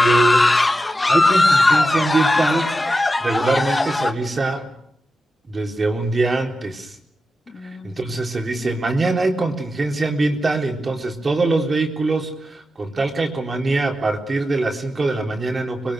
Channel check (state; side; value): normal; both; correlation 0.90